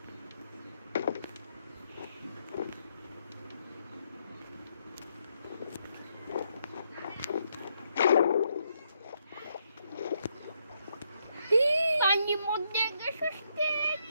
পানির মধ্যে গেছতে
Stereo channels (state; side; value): inverted; both; correlation -0.77